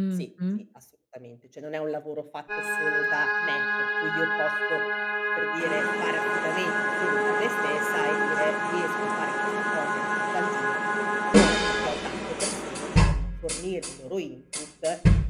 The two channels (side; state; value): both; identical; correlation 1.00